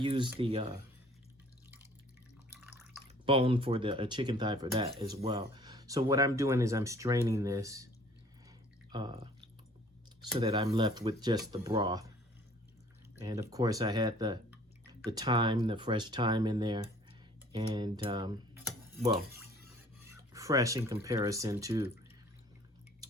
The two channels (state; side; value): normal; both; correlation 0.54